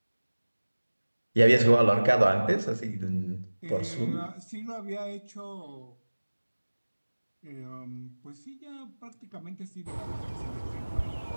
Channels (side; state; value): both; inverted; correlation -1.00